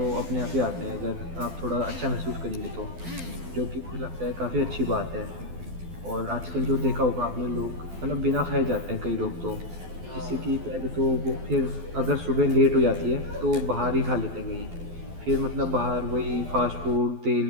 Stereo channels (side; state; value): left; late; 12 ms